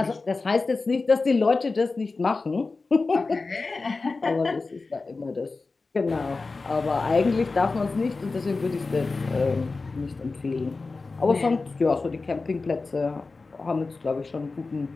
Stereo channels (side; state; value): right; quieter; 3.8 dB